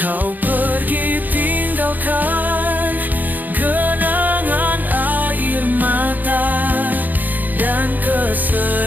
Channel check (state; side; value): late; left; 0.084 ms